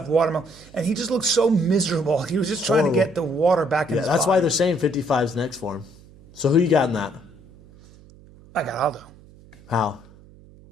watermelon. And he just looked so miserable. He was just trying to Horrible. get the water back in Yeah, his that's body. why they're saying 55's next for him. So who you got in that? I got Aldo. How?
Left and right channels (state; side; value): noise; right; hum, 24 dB below the sound